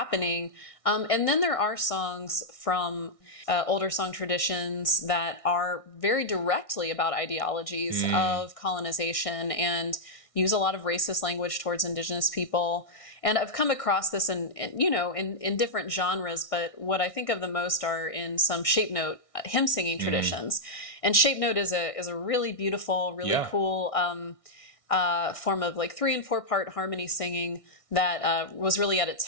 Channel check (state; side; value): late; right; 1.6 ms